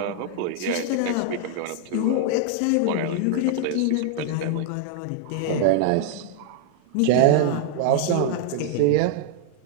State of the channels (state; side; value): different; both; correlation 0.00